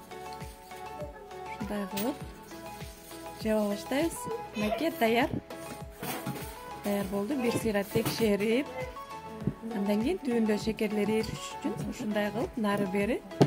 ушундай кылып жаба баштайбыз. Мынакей даяр. Даяр болду. Бир сыйра текшерип, андан кийин түбүндө шекерлер эриш үчүн ушундай кылып нары бери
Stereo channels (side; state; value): both; identical; correlation 1.00